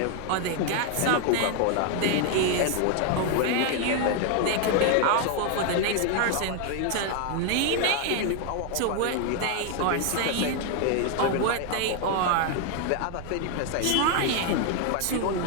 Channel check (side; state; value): both; different; correlation 0.01